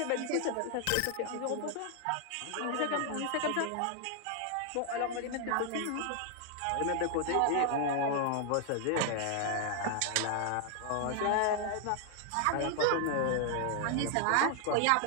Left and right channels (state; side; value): different; both; correlation 0.00